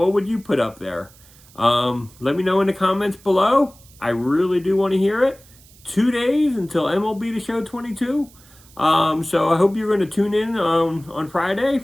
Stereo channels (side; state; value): right; noise; hiss, 25 dB below the sound